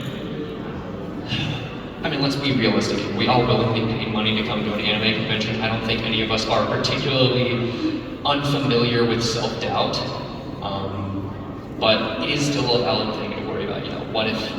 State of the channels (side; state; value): both; identical; correlation 1.00